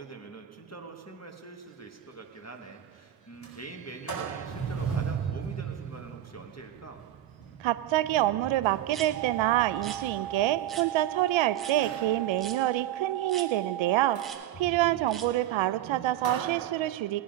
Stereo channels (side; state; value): left; quieter; 12.9 dB